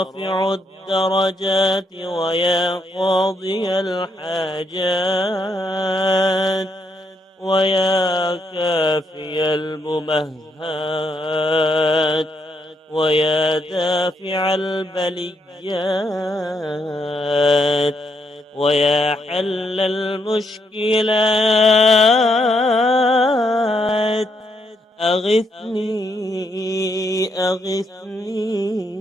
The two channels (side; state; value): both; normal; correlation 0.77